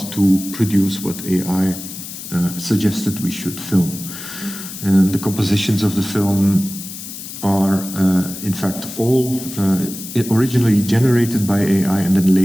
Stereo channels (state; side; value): noise; left; hiss, 11 dB below the sound